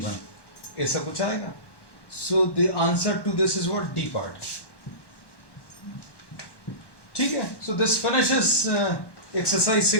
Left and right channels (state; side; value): late; right; 1.1 ms